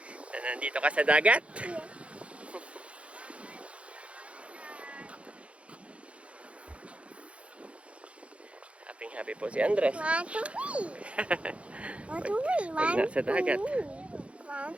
Na nandito ka sa dagat? Happy po si Andres. Pag nasa dagat.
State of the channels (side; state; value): left; late; 0.062 ms